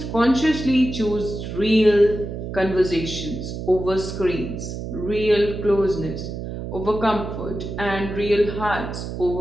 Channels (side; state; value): right; noise; hum, 7 dB below the sound